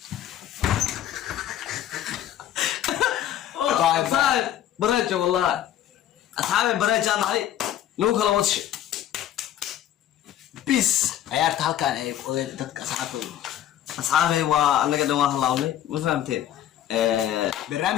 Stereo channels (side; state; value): right; quieter; 11.5 dB